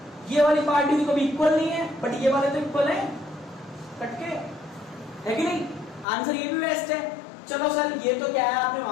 ये वाली पार्टी तो कभी इक्वल नहीं है, बट ये वाले तो इक्वल है कट के, है कि नहीं? आंसर ये भी बेस्ट है। चलो सर ये तो क्या है, आपने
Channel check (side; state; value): right; drops out; at 6.1 s